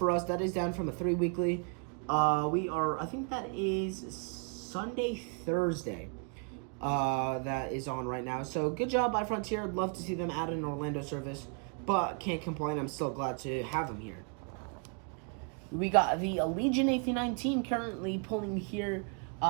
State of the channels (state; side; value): quieter; left; 37.0 dB